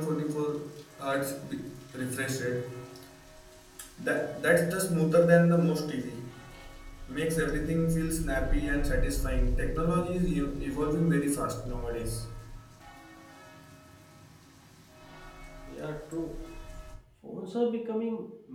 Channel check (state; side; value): identical; both; correlation 1.00